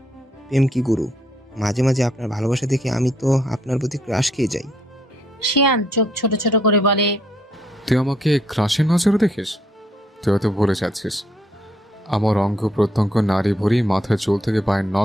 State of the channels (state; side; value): normal; both; correlation 0.71